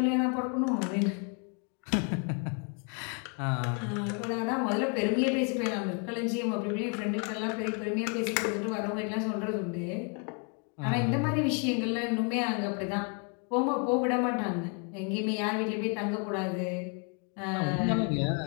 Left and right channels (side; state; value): right; quieter; 37.7 dB